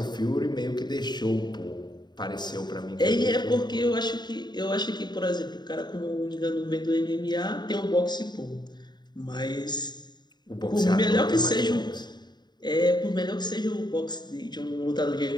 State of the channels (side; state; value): right; late; 0.21 ms